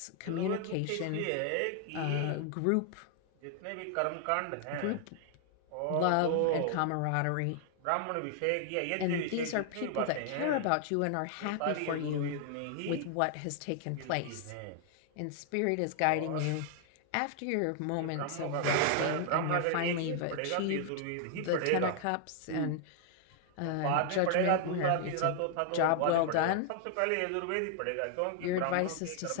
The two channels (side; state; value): both; different; correlation 0.00